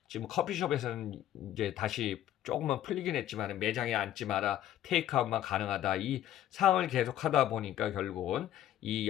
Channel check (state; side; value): quieter; right; 12.0 dB